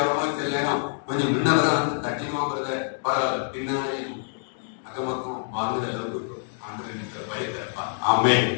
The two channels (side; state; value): right; silent; digital silence